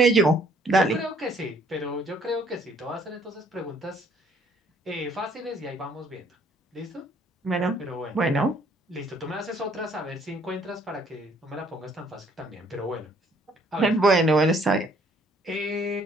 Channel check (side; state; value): both; normal; correlation 0.63